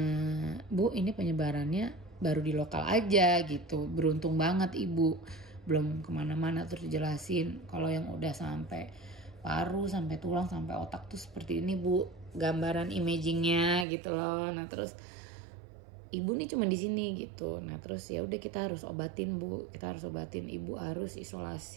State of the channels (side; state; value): left; drops out; at 13.9 s